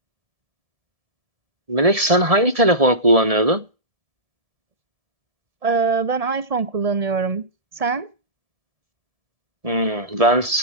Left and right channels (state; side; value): late; left; 1.7 ms